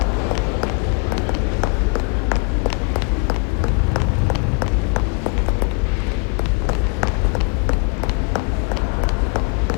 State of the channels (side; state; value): right; quieter; 32.3 dB